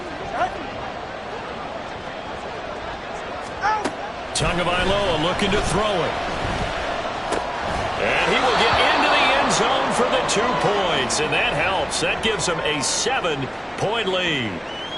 Tagovailoa looking to throw it. And he will get into the end zone for the 2 points, and that helps. That gives them a 7-point lead.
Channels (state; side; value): identical; both; correlation 1.00